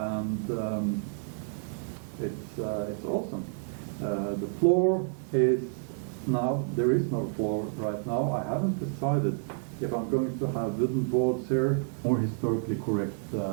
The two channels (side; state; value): left; silent; 58 dB below the other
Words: it's awesome. The floor is now, there is no floor right now. I haven't decided if I'm going to have wooden boards here, more historically correct,